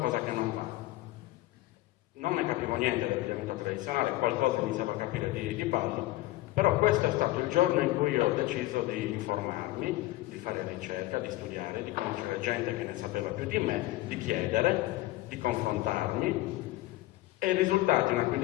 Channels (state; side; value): quieter; right; 17.8 dB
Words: che non va. Non ne capivo niente dell'abbigliamento tradizionale, qualcosa iniziavo a capire di ballo, però questo è stato il giorno in cui ho deciso di informarmi, di fare ricerca, di studiare, di conoscere gente che ne sapeva più di me, di chiedere, di confrontarmi. E i risultati una